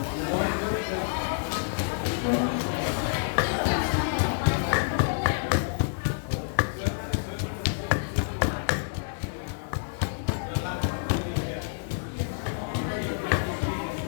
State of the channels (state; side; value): silent; right; 59 dB below the other